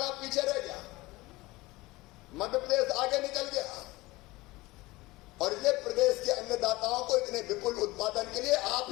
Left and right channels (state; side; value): quieter; right; 20.8 dB